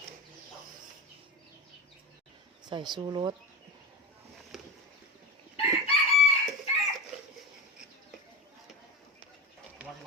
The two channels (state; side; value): normal; both; correlation 0.23